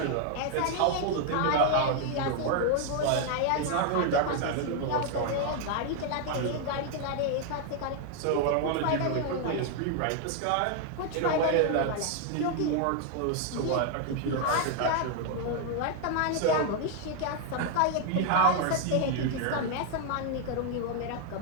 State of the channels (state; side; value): different; both; correlation 0.00